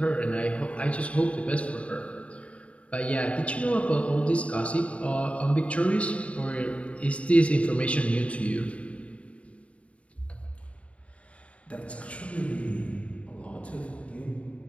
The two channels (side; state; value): right; late; 0.064 ms